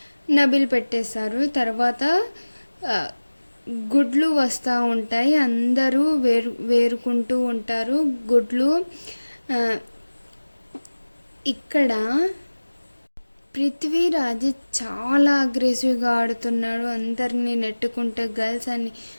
నబిల్ పెట్టేస్తారు. తర్వాత గుడ్లు వస్తూ ఉంటాయి, అందరూ వేరుకుంటూ ఉంటారు గుడ్లు. ఇక్కడ పృథ్వీరాజ్ చాలా అగ్రెసివ్గా ఆడుతున్నాడు, అందరినీ నెట్టుకుంటే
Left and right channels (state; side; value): inverted; both; correlation -1.00